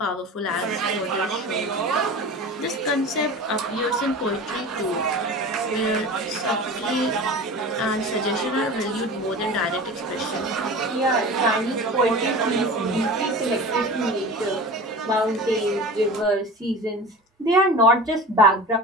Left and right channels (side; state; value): both; normal; correlation 0.35